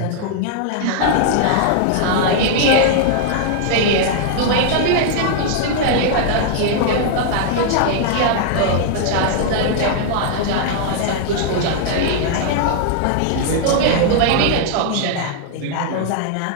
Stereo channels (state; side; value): different; both; correlation 0.00